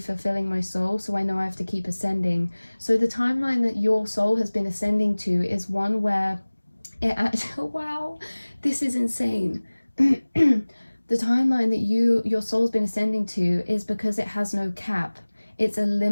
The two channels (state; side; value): inverted; both; correlation -1.00